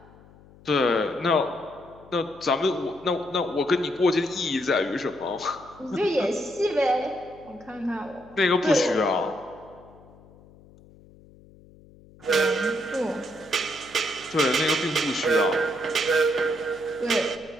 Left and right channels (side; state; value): left; noise; hum, 24 dB below the sound